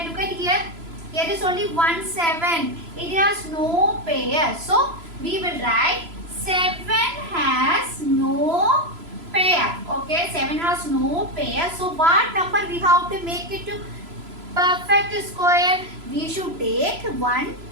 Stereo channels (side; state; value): left; late; 3.0 ms